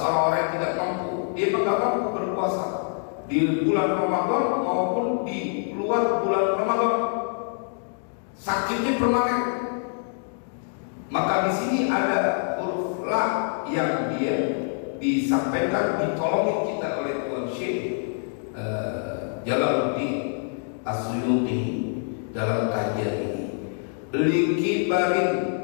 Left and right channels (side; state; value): right; silent; 61 dB below the other